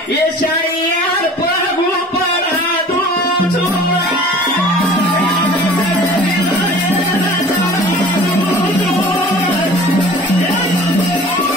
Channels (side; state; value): both; normal; correlation 0.45